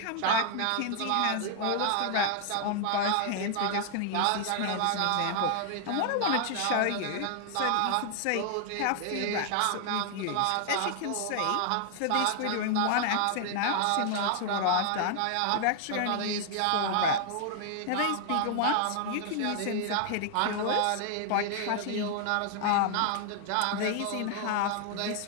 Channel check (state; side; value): different; both; correlation 0.00